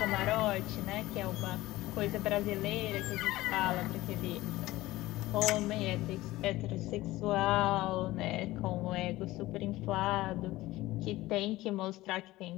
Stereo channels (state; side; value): quieter; right; 17.7 dB